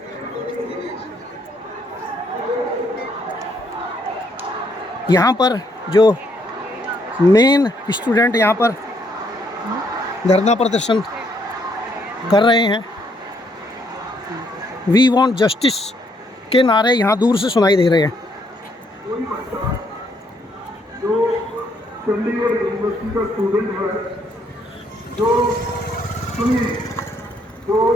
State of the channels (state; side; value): normal; both; correlation 0.71